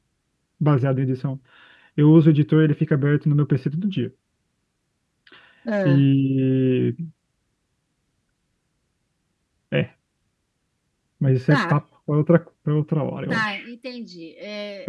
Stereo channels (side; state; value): both; identical; correlation 1.00